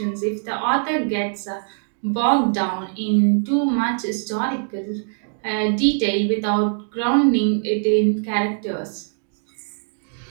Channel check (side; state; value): left; silent; digital silence